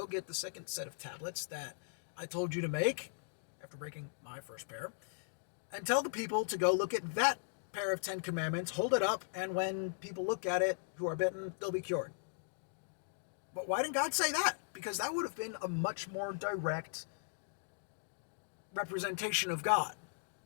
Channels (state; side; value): silent; right; digital silence